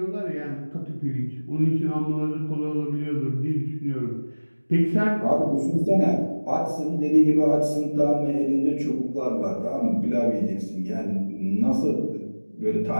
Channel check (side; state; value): both; inverted; correlation -1.00